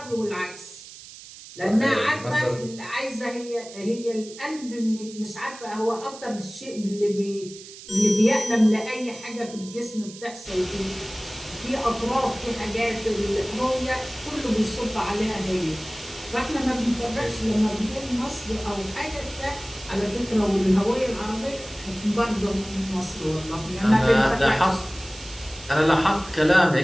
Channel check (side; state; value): right; noise; hiss, 16 dB below the sound